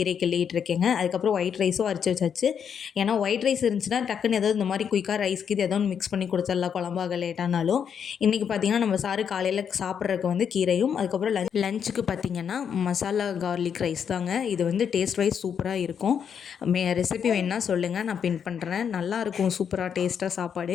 கிள்ளிகிட்டு இருக்கேங்க. அதுக்கப்புறம் ஒயிட் ரைஸும் அரைச்சி வச்சாச்சு. ஏன்னா ஒயிட் ரைஸ் இருந்துச்சுன்னா டக்குன்னு ஏதாவது இந்த மாதிரி குயிக்காக ரைஸ்க்கு இது ஏதோ ஒன்று மிக்ஸ் பண்ணி கொடுத்துடலாம் குழம்பாக லேட்டானாலும். இன்றைக்கி பார்த்திங்கன்னா நம்ம சாரு காலையில் சாப்பிட்றதுக்கு வந்து கீரையும், அதுக்கப்புறம் லஞ்சுக்கு பார்த்திங்கன்னா மசாலா கார்லிக் ரைஸ் தாங்க. இது வந்து டேஸ்ட் வைஸ் சூப்பராக இருக்கும். ரெசிபி வேணுன்னா சொல்லுங்கள், நான் பின் பண்ணுறேன். நல்லாயிருக்கும், சூப்பராக டேஸ்ட்டாக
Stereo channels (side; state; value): right; quieter; 7.6 dB